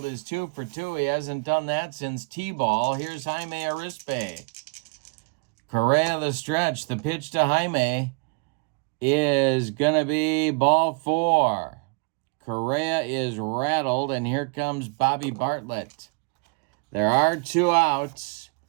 is 2 for 2. He hasn't done that since T-ball. Here's Jaime Arispe. Correa the stretch. The pitch to Jaime is going to be ball 4. Correa is rattled, and here comes Bobby Bartlett. There are 2 outs.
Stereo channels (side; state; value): left; quieter; 35.2 dB